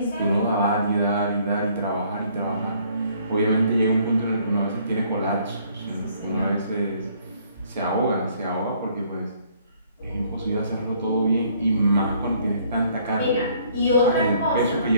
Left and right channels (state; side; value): inverted; both; correlation -0.62